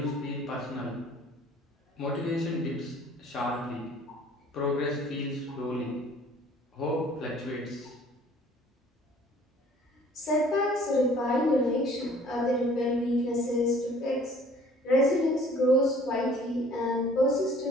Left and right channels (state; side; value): normal; both; correlation 0.53